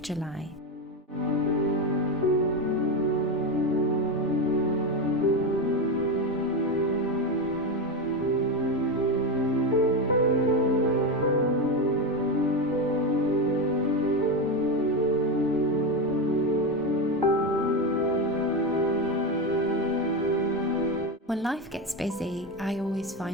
July. When life gets busy, I always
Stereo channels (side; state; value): both; normal; correlation 0.14